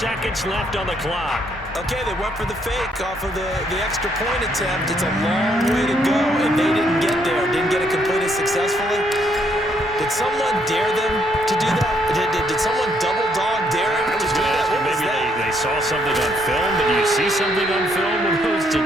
left on the clock. Okay, they went for the fake off of the extra point attempt. It's a long way to go, and they didn't get there. Didn't get it completed successfully. Did someone dare them to do that? Did someone double dog dare him to do that? Maybe they saw something on film. Did you see something on film when it was to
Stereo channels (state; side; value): normal; both; correlation 0.71